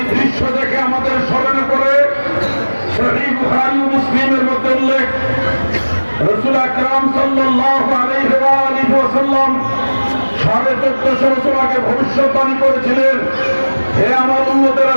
দৃশ্য দেখে আমাদের স্মরণে পড়ে সহিহ বুখারী ও মুসলিমের মধ্যে উল্লেখ, রাসূল আকরাম সাল্লাল্লাহু আলাইহি ওয়াসাল্লাম 1450 বছর আগে ভবিষ্যৎবাণী করেছিলেন, হে আমার উম্মতেরা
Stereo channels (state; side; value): inverted; both; correlation -1.00